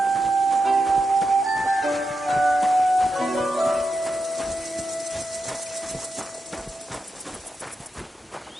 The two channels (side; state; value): both; normal; correlation 0.87